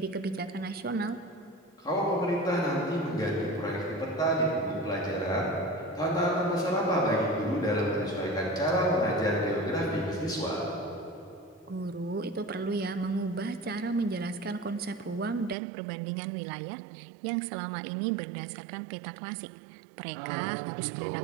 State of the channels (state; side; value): drops out; left; at 15.6 s